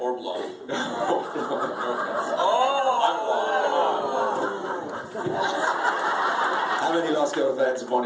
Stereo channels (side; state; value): both; identical; correlation 1.00